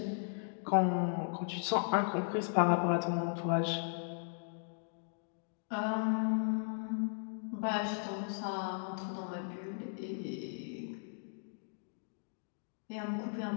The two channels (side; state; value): right; silent; digital silence